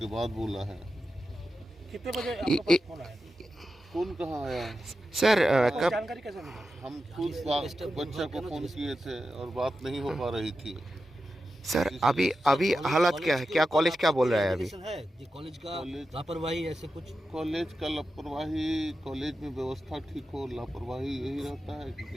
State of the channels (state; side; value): normal; both; correlation 0.91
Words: बाद बोला है। कितने बजे आपके पास फोन आया? फोन कहाँ आया सर? कब जानकारी कैसे मिली? हम खुद बच्चा को फ़ोन किए थे और बात नहीं हो पा रही थी। सर अभी हालत क्या है? क्या कॉलेज क्या बोल रहा है अभी? कॉलेज का लापरवाही ऐसे कुछ? कॉलेज का लापरवाही, कॉलेज में व्यवस्था ठीक हो, लापरवाही यही रहता है कि